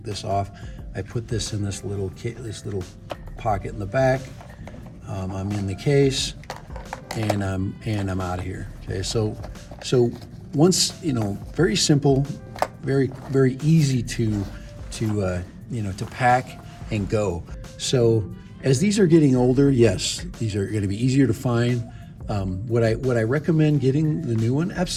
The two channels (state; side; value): identical; both; correlation 1.00